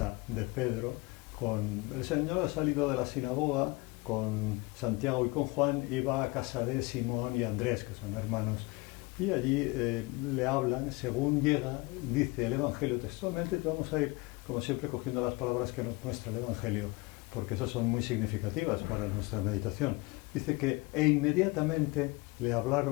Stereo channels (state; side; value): quieter; right; 24.7 dB